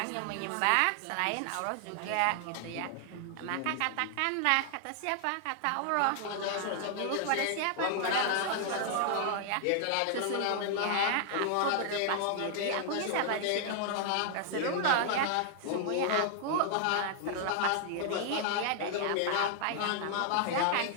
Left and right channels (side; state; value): both; different; correlation 0.00